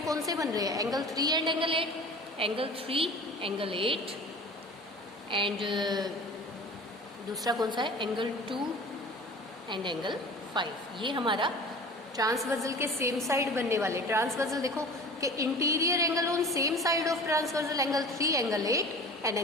कौन से बन रहे हैं? Angle 3 and angle 8, angle 3 angle 8 and दूसरा कौन सा है? Angle 2 and angle 5। ये हमारा ट्रांसवर्सल के सेम साइड बनने वाले। ट्रांसवर्सल देखो कि interior angle on same side of transversal angle 3 angle 8 and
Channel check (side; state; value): both; normal; correlation 0.40